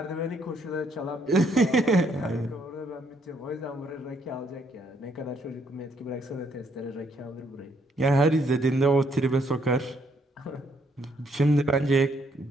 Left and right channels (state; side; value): normal; both; correlation 0.70